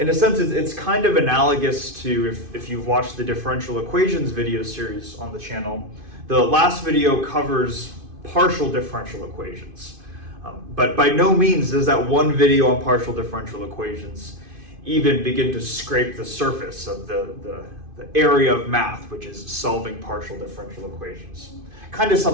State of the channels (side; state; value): left; late; 2.5 ms